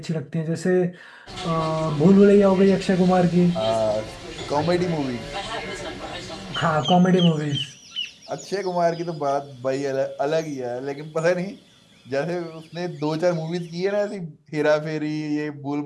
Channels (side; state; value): both; identical; correlation 1.00